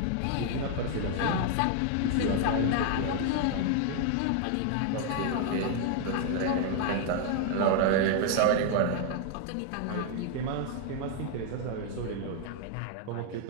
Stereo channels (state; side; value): different; both; correlation 0.00